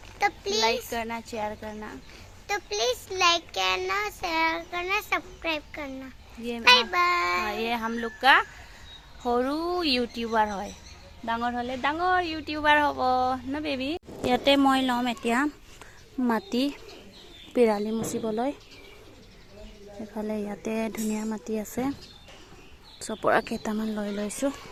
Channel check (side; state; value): both; identical; correlation 1.00